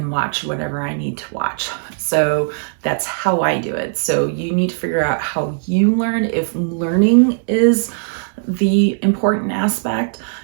watch whatever I need to watch. So that's how I do it. So you need to figure out how you learn. If learning is the important aspect,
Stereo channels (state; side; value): silent; left; digital silence